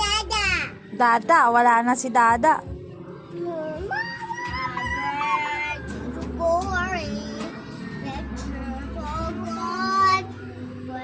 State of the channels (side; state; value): both; identical; correlation 1.00